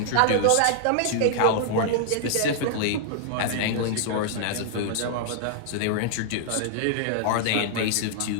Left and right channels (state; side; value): different; both; correlation -0.01